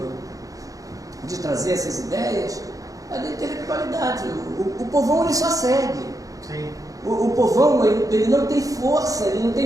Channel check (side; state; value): left; late; 0.17 ms